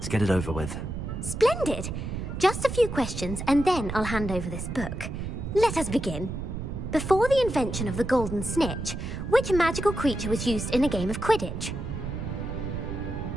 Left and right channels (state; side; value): noise; right; rumble, 5 dB below the sound